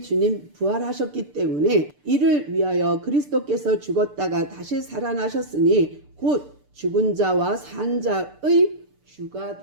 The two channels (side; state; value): left; late; 6.8 ms